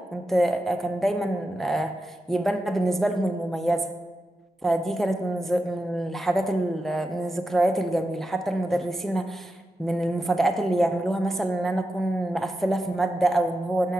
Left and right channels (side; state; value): both; normal; correlation 0.89